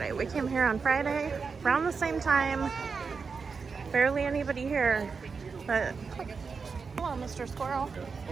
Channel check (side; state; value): left; quieter; 5.2 dB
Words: We came here on Friday around the same time. Barely anybody here, but hello, Mr. Squirrel.